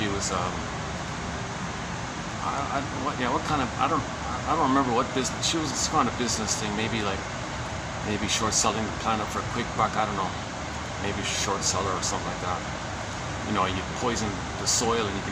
was, I don't remember what business. She was some kind of business thing, maybe short selling the planet for a quick buck. I don't know, maybe short seller or something like that. You know, you poison the soil and you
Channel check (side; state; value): both; identical; correlation 1.00